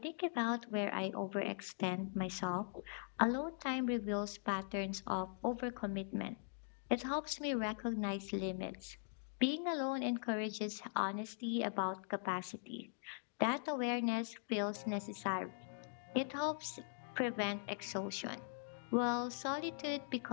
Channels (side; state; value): right; silent; digital silence